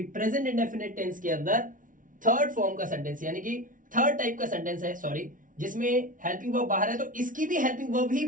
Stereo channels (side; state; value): left; late; 0.38 ms